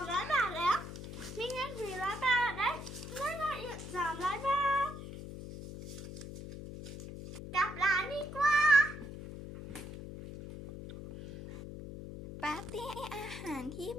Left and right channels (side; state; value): left; noise; hum, 10 dB below the sound